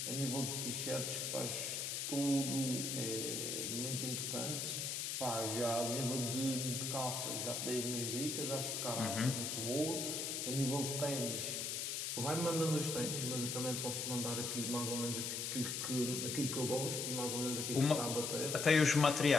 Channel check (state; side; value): noise; left; hiss, 2 dB below the sound